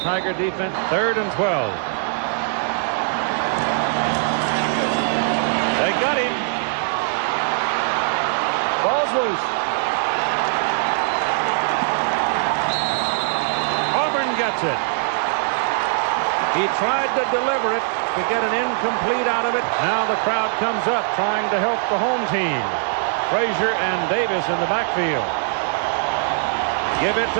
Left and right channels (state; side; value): silent; left; digital silence